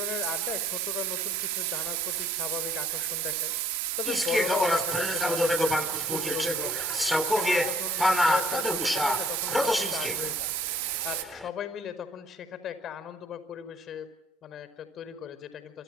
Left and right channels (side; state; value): both; normal; correlation 0.57